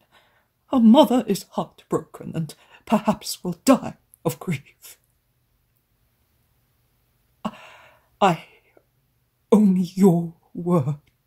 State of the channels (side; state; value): both; identical; correlation 1.00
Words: Her mother is heartbroken and perhaps will die of grief. Only your